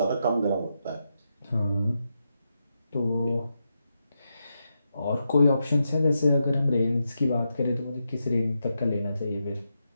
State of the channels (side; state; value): both; inverted; correlation -0.86